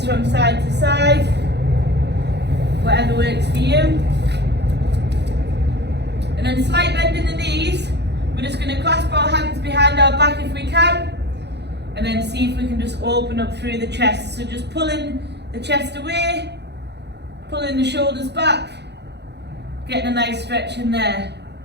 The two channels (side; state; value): left; late; 0.49 ms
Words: from side to side, whatever works for you. And then slight bend in the knees. We're just going to clasp our hands behind our back if we can, and then see if we can just open up through the chest. So just pulling the chest away, pulling the shoulders back, getting a nice stretch in there.